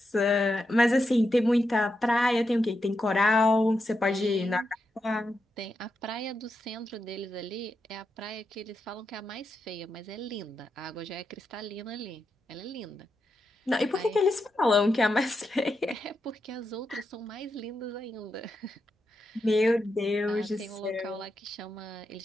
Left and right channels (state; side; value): normal; both; correlation 0.86